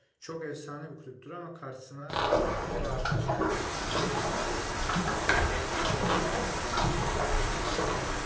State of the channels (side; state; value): both; identical; correlation 1.00